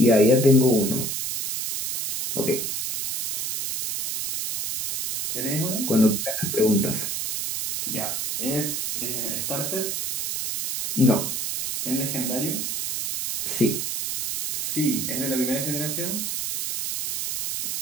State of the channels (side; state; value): right; noise; hiss, 1 dB below the sound